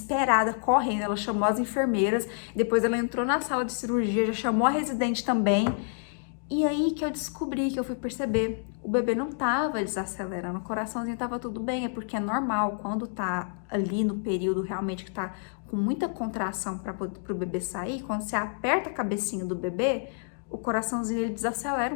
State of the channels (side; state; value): right; silent; digital silence